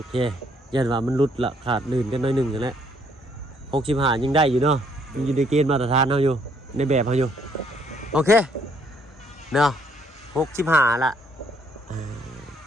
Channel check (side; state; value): both; normal; correlation 0.67